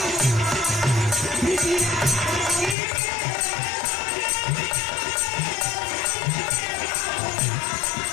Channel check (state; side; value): drops out; right; at 2.8 s